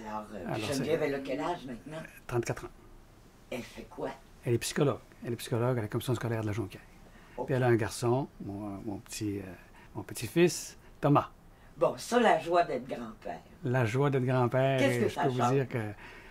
Alors Geneviève, elle a quel âge maintenant? 34 ans. Elle fait quoi? Elle est psychologue. Elle est psychologue à la commission scolaire de la Jonquière. Okay. Puis elle a un garçon, mon petit-fils, Thomas. Bon, ça, la joie d'être grand-père. La joie d'être grand-père. Qu'est-ce que je ça peux change? vous dire que...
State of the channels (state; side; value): identical; both; correlation 1.00